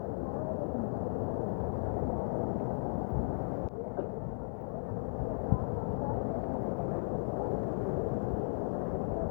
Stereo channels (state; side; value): silent; right; 54 dB below the other